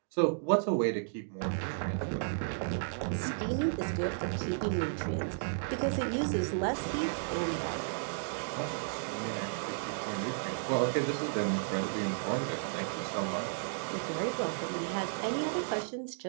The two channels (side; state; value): left; silent; digital silence